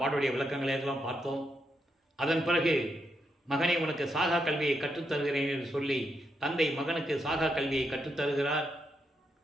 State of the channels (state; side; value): normal; both; correlation 0.81